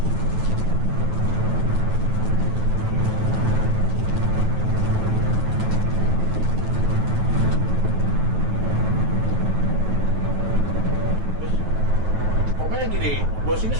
Pokoknya gini, bos ini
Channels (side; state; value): left; late; 8.9 ms